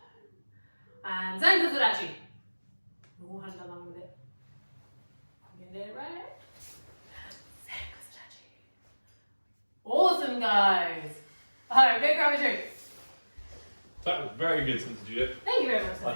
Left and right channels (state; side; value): inverted; both; correlation -1.00